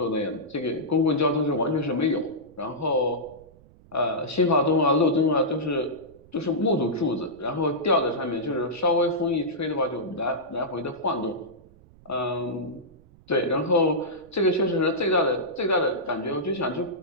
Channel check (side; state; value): right; noise; rumble, 25 dB below the sound